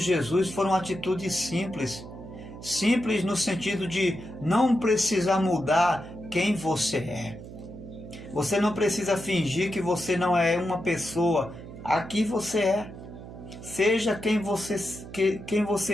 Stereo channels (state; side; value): noise; right; hum, 14 dB below the sound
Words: foi uma atitude simples. Simples no sentido de não precisar mudar quem você é. Você não precisa fingir que você não é uma pessoa. Aqui você é. Seja quem